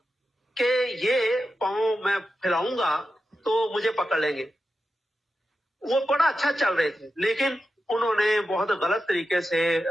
कि ये पांव मैं फैलाऊंगा तो मुझे पकड़ लेंगे। वो बड़ा अच्छा चल रहे थे, लेकिन उन्होंने बहुत गलत तरीके से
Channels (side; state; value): both; normal; correlation 0.90